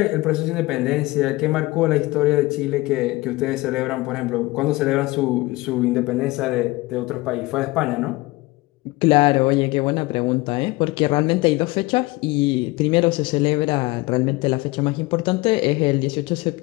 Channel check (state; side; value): quieter; right; 21.3 dB